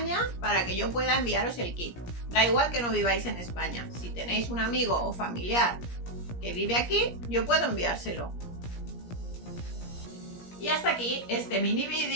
para que yo pueda enviaros el kit. Da igual que no viváis en España. Si tenéis un amigo o familiar que vive aquí, yo puedo enviárselo. Y hasta aquí este mini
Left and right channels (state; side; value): late; right; 17 ms